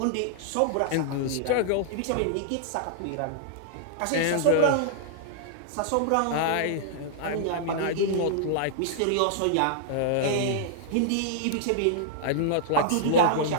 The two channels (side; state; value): both; different; correlation -0.01